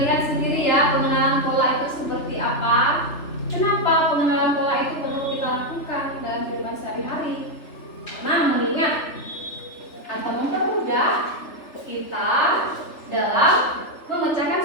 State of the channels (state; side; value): late; right; 3.3 ms